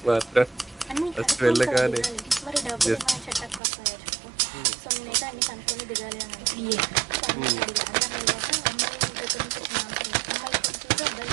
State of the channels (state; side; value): drops out; left; at 3.6 s